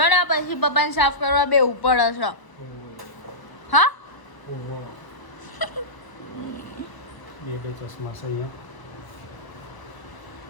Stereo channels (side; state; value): right; late; 1.0 ms